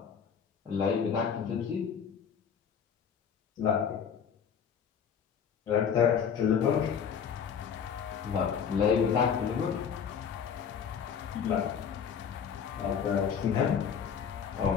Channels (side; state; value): right; quieter; 7.3 dB